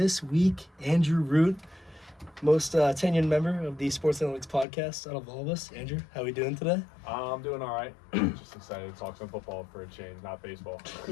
week, Andrew Root, most tenured member of the Sports Analytics podcast out of all of us. Andrew, how are we doing today? I'm doing all right. Just excited to talk some football for a change, not baseball.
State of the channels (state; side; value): drops out; right; at 4.7 s